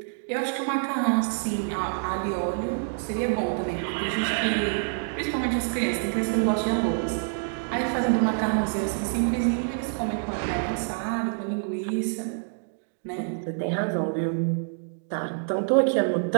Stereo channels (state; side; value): silent; left; digital silence